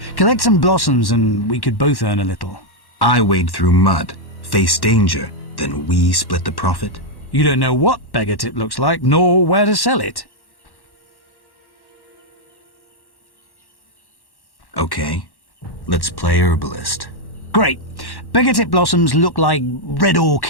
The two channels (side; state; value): right; late; 1.1 ms